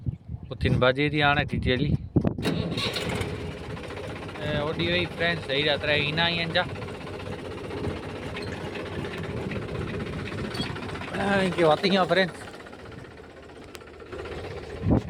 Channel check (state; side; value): identical; both; correlation 1.00